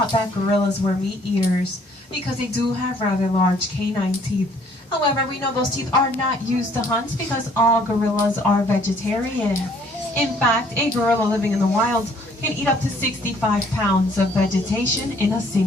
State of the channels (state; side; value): normal; both; correlation 0.61